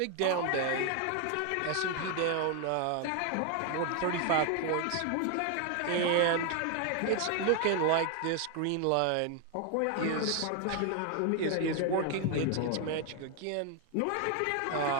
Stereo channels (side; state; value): both; different; correlation 0.01